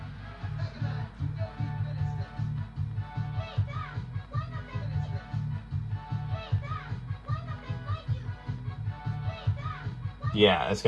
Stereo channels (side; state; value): both; identical; correlation 1.00